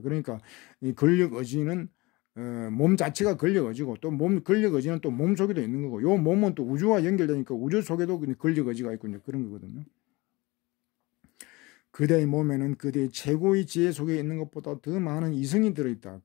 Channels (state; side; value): quieter; right; 23.1 dB